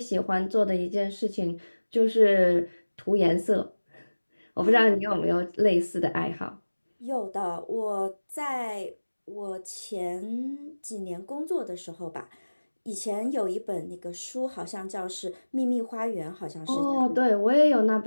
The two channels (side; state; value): both; inverted; correlation -1.00